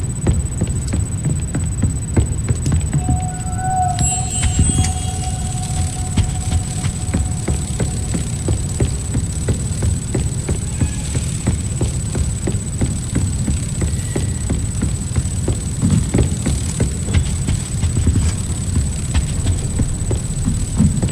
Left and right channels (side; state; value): both; identical; correlation 1.00